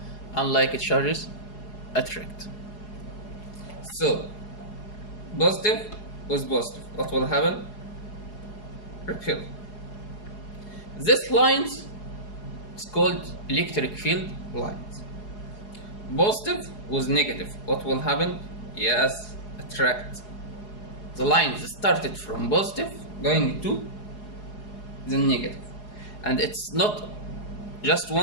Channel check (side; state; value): right; late; 4.8 ms